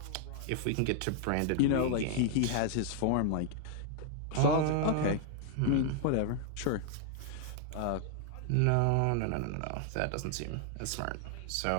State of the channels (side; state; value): both; different; correlation 0.00